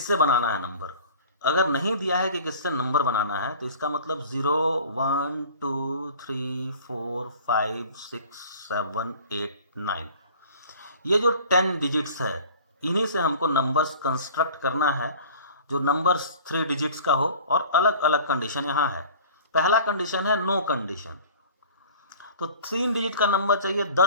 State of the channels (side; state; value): both; inverted; correlation -0.45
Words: बनाना है number. अगर नहीं दिया है कि किससे नंबर बनाना है तो इसका मतलब 0 1 2 3 4 5 6 7 8 9, ये जो 10 डिजिट्स है इन्हीं से हमको नंबर्स कंस्ट्रक्ट करना है जो नंबर्स 3 डिजिट्स का हो। और अलग अलग कंडीशन यहाँ है। पहला कंडीशन है नो कंडीशन, तो 3 डिजिट का नंबर चाहिए,